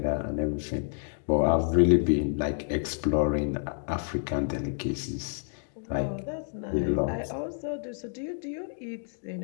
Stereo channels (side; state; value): right; silent; digital silence